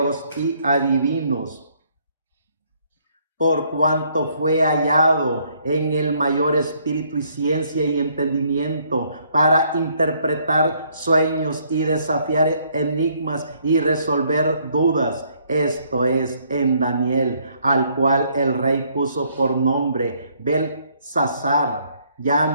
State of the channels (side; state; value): both; inverted; correlation -0.67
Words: y adivinos. Por cuanto fue hallado en el mayor espíritu y ciencia y entendimiento para interpretar sueños y desafiar enigmas y resolver dudas. Esto es en Daniel, al cual el rey puso por nombre Belsasar.